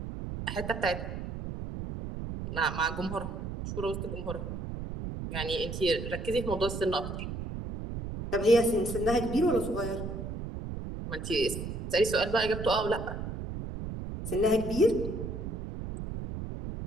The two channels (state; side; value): noise; right; rumble, 6 dB below the sound